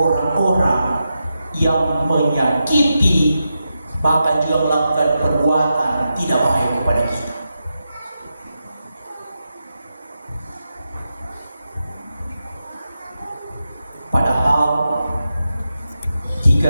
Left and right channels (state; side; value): inverted; both; correlation -0.88